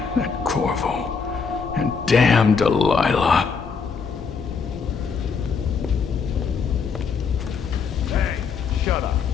that Corvo, and damn Delilah. Hey, shut up.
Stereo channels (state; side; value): quieter; right; 5.6 dB